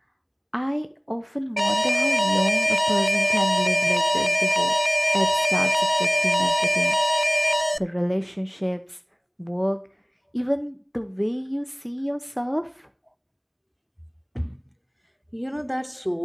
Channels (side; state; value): both; identical; correlation 1.00